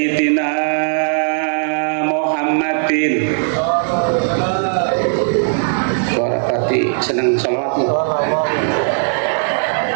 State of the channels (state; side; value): silent; left; 68 dB below the other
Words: Muhammadin warahmati seneng sholawatmu